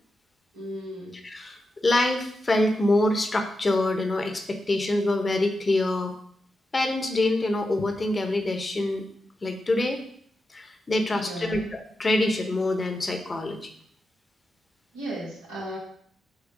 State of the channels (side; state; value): both; normal; correlation 0.89